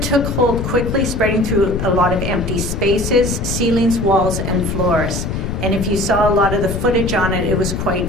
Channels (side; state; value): left; noise; rumble, 3 dB below the sound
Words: hold quickly, spreading through a lot of empty spaces, ceilings, walls, and floors. And if you saw a lot of the footage on it, it was